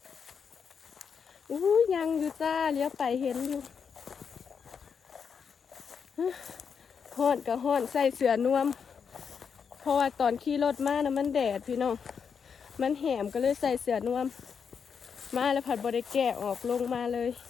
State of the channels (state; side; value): quieter; right; 6.5 dB